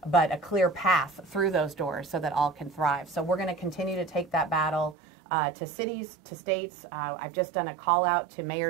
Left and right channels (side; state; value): left; drops out; at 5.0 s